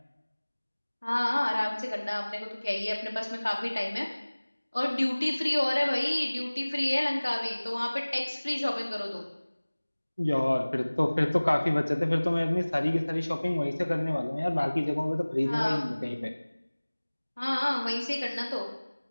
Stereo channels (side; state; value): both; inverted; correlation -1.00